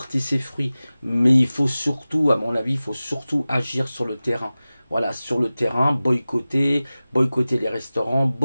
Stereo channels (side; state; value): both; inverted; correlation -0.97